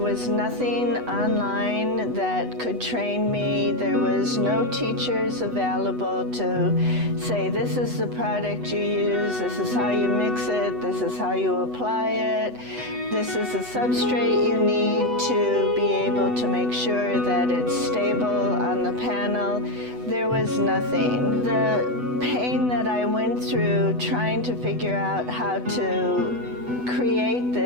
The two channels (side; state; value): left; late; 8.1 ms